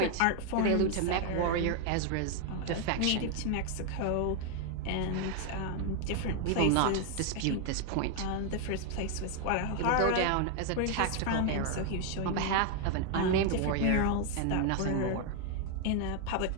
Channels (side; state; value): both; different; correlation 0.01